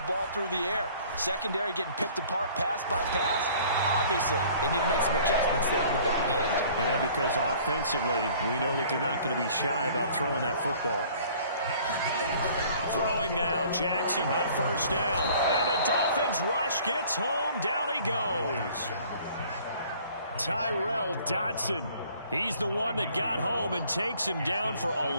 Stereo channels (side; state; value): both; inverted; correlation -0.53